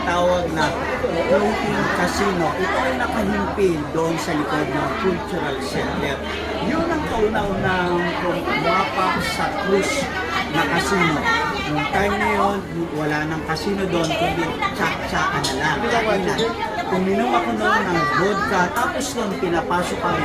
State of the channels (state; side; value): identical; both; correlation 1.00